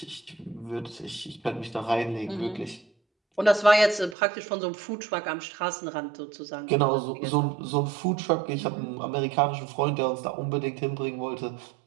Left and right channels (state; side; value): drops out; left; at 4.2 s